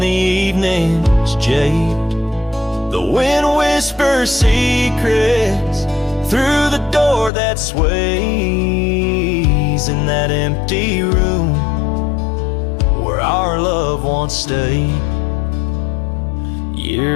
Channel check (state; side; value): drops out; right; at 7.3 s